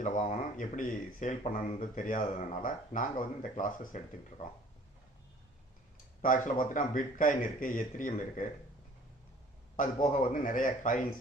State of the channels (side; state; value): both; normal; correlation 0.52